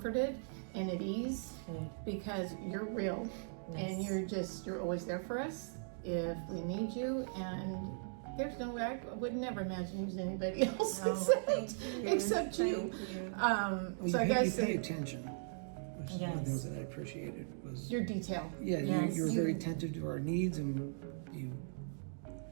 and at ease because you're real and you're always there for us if we need you. And there's no way, I would never imagine using anybody else except you. So I guess you pay attention. Which is one of the things that I appreciated was your detail. You were very attentive to our needs, and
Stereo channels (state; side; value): silent; left; digital silence